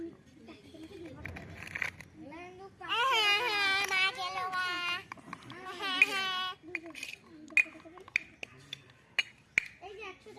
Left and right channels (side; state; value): both; identical; correlation 1.00